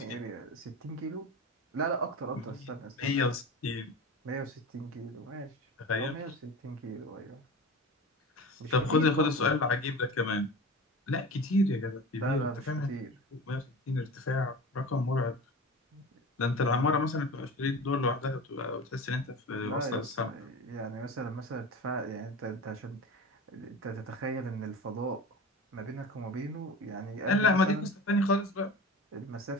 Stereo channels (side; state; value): both; normal; correlation 0.32